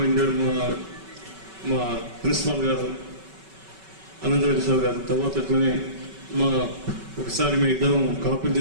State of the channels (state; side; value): late; left; 5.3 ms